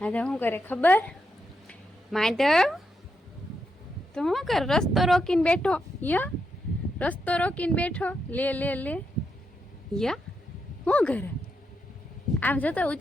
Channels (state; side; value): normal; both; correlation 0.83